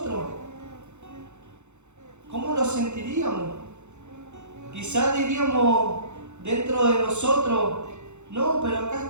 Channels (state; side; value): late; left; 0.83 ms